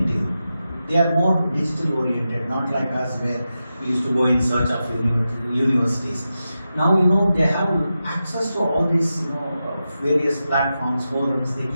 They are more digital oriented, not like us where we used to go in search of universities. Now they have access to all these various platforms, forums. They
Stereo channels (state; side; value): inverted; both; correlation -0.91